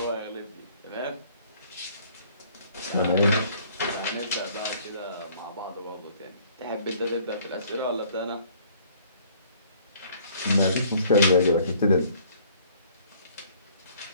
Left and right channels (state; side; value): inverted; both; correlation -0.57